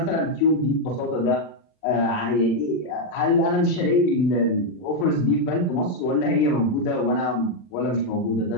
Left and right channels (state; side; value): late; right; 40 ms